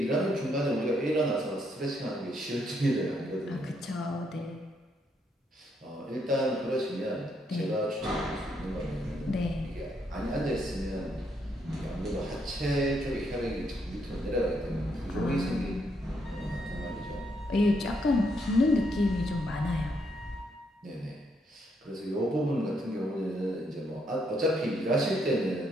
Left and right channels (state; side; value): normal; both; correlation 0.75